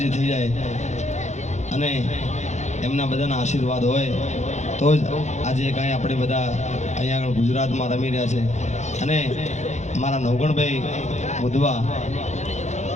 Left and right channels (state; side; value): late; right; 0.33 ms